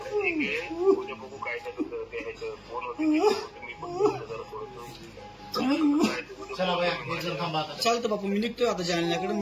चालतं बापू, मी निघतोय आता जालन्याकडे।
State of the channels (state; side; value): identical; both; correlation 1.00